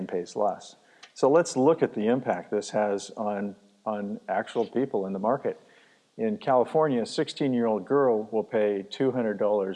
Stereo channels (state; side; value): identical; both; correlation 1.00